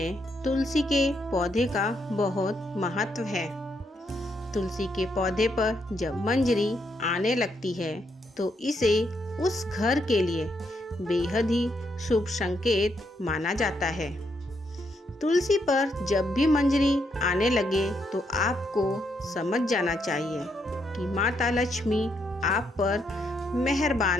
तुलसी के पौधे का बहुत महत्व है। तुलसी के पौधे पर जब मंजरी आने लगती है तो इसे उस घर के लिए बेहद ही शुभ संकेत माना जाता है। तुलसी पर जब भी मंजरी आने लगे तो आपको समझ जाना चाहिए कि माता लक्ष्मी आप पर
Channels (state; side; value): normal; both; correlation 0.77